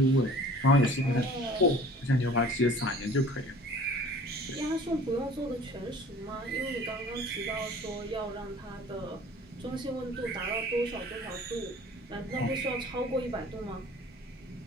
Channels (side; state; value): both; normal; correlation 0.47